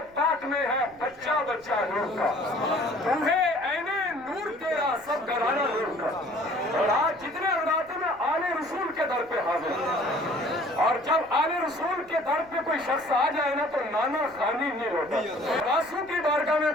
पाक में है बच्चा बच्चा नूर का, तुम्हें ऐने नूर तेरा सब घराना नूर का। और आज जितने लगाते में आले रसूल के दर पे हाजिर, और जब आले रसूल के दर पे कोई शख्स आ जाए ना, तो नाना खाली नहीं होता। रासू की बारगाह में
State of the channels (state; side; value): noise; left; rumble, 28 dB below the sound